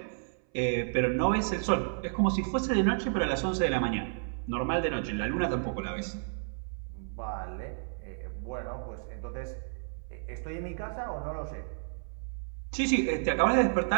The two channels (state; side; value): silent; left; 57 dB below the other